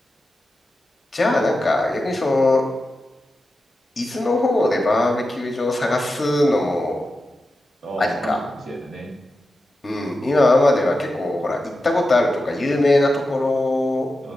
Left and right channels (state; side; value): normal; both; correlation 0.91